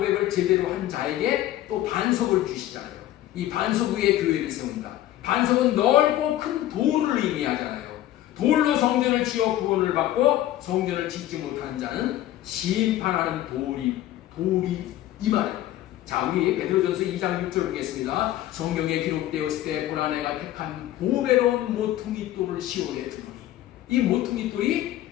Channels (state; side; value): quieter; right; 13.8 dB